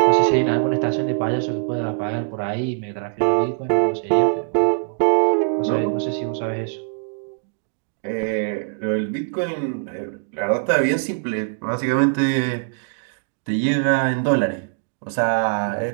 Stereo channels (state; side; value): silent; left; digital silence